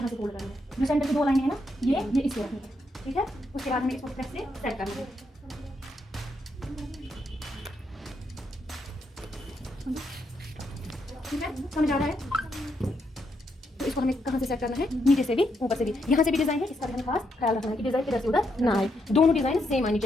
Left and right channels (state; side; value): normal; both; correlation 0.79